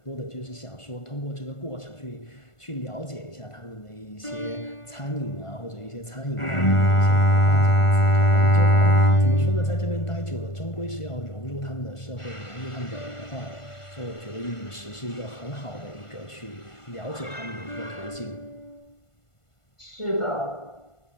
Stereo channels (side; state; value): right; late; 1.5 ms